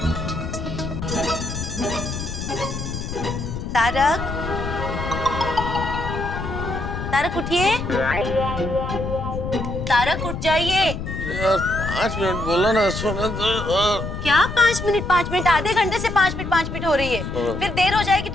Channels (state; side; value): noise; left; rumble, 5 dB below the sound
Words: तारक, तारक उठिए। तारक उठ जाइए। यार 5 मिनट बोला ना, सोने दो। क्या 5 मिनट? आधे घंटे से 5 मिनट हो रही है। फिर देर हो जाएगी